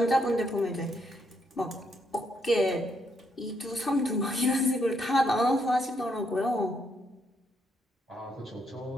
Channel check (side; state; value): both; normal; correlation 0.75